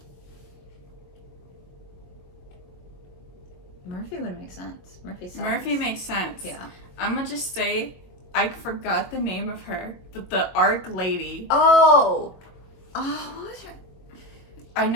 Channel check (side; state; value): right; late; 22 ms